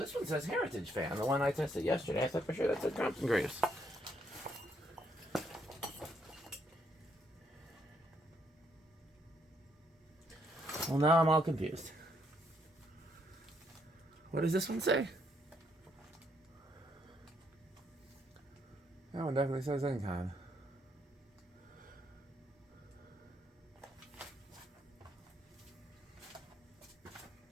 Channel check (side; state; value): both; normal; correlation 0.73